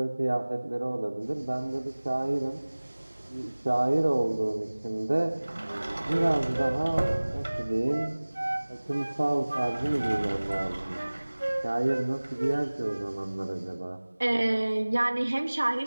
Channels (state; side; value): inverted; both; correlation -1.00